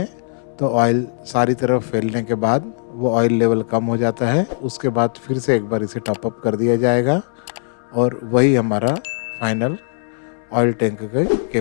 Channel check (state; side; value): silent; right; 66 dB below the other